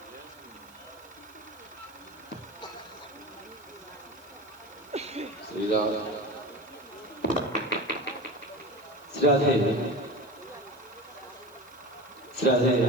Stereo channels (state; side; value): noise; right; hiss, 25 dB below the sound